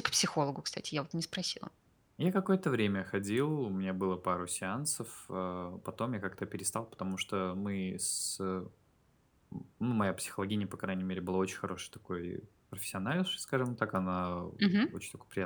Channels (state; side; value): identical; both; correlation 1.00